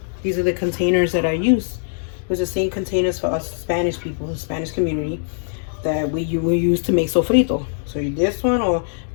These are the containers that I use. Those are the same containers for us Spanish people, the Spanish community, that we use to make sofrito. So this one, or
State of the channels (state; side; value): silent; right; digital silence